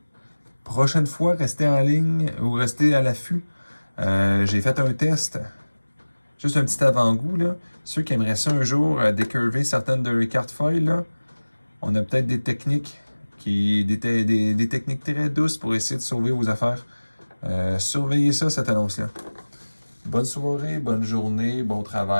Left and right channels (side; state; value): both; inverted; correlation -1.00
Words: Prochaine fois, restez en ligne ou restez à l'affût. J'ai fait un test. Juste un petit avant-goût, là. Ceux qui aimeraient ça un jour, décurver certaines de leurs cartes foil, là, on a peut-être des techniques des techniques très douces pour essayer de sauver vos affaires. Surveillez ça, cette annonce-là. Bonne soirée, bonne journée, bon